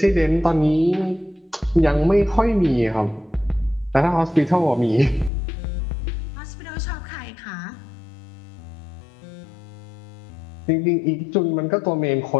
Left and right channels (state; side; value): drops out; right; at 5.3 s